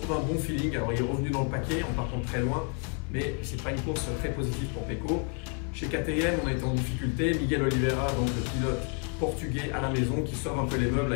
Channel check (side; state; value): right; quieter; 36.8 dB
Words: un bon feeling. Alors il est revenu dans le paquet en partant de très loin, mais c'est pas une course très positive pour Pecco. Chez KTM, on a été en difficulté. Miguel Oliveira, donc le pilote portugais à la maison, qui sauve un peu les meubles